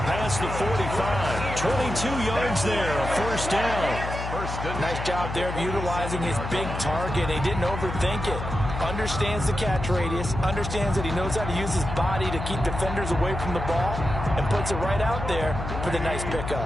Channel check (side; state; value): left; noise; hum, 6 dB below the sound